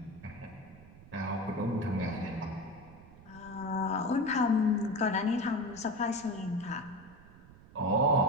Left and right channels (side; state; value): right; noise; rumble, 21 dB below the sound